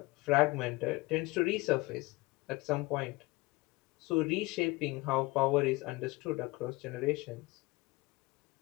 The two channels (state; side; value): quieter; right; 22.6 dB